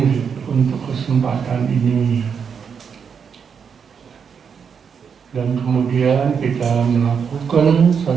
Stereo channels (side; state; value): left; quieter; 6.7 dB